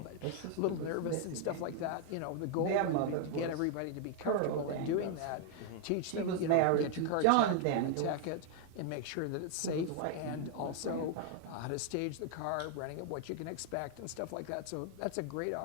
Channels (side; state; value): both; different; correlation 0.00